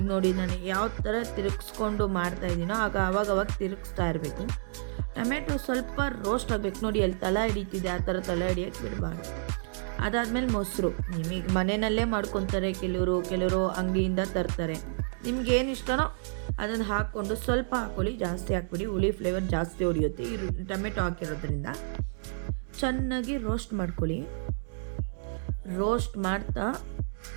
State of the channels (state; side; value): silent; left; digital silence